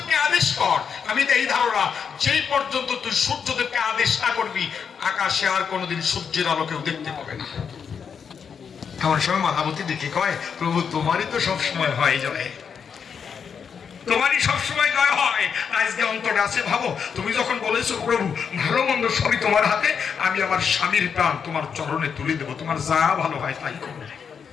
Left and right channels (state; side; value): quieter; right; 6.7 dB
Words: আদেশ কর, আমি এই ধারণা যেই পর্যন্ত তুই সূর্যদেবকে আদেশ না করবি আকাশে আর কোনোদিন সূর্যের আলো কেউ দেখতে পাবে না। এমন সময় মালাবতী দেখে কয় প্রভু তোমারই তো সব সময় হয় যায়। তোমারই সবসময় জয় হয়। আজকে অন্তরে আছে ভাবো, তুমি যখন বলেছো প্রভু ভালো মন্দ সবই তোমার হাতে, আমি আমার স্বামীর প্রাণ তোমার চরণে তুলে দেবো, তোমার যা ভালো হয় তাই করবে।